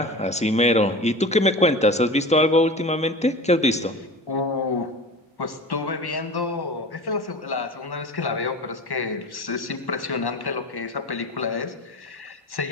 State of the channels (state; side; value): normal; both; correlation 0.34